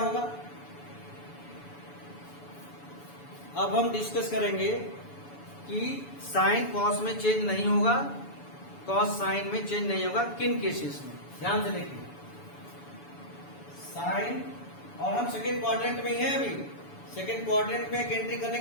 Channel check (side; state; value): right; late; 7.0 ms